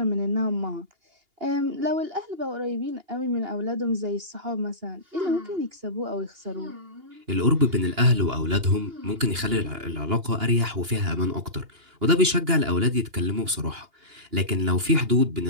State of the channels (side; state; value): left; late; 2.8 ms